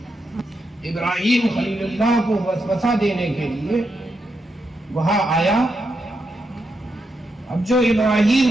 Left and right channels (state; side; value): normal; both; correlation 0.84